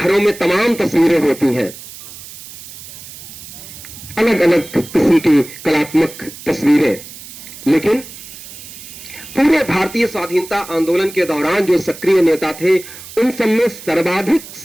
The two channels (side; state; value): right; noise; hiss, 15 dB below the sound